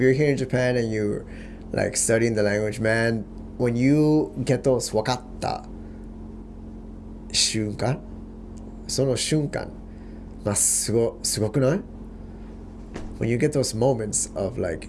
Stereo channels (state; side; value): identical; both; correlation 1.00